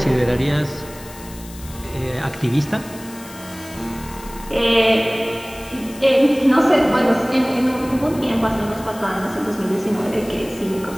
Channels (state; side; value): noise; left; hiss, 18 dB below the sound